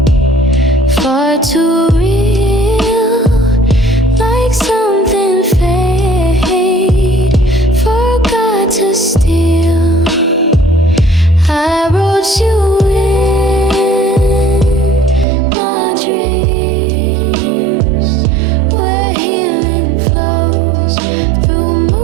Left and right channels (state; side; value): drops out; left; at 15.2 s